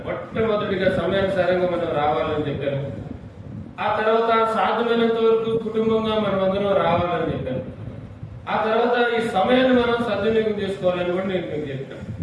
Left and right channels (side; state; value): both; identical; correlation 1.00